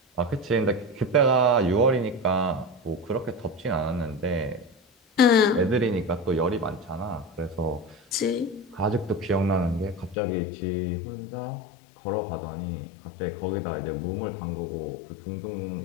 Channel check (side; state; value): right; drops out; at 10.2 s